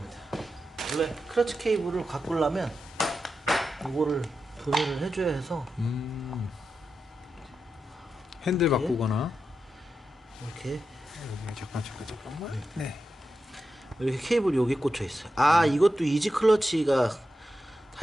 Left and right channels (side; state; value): both; normal; correlation 0.89